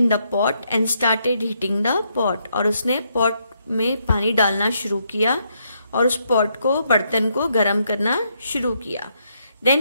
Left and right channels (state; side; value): inverted; both; correlation -0.76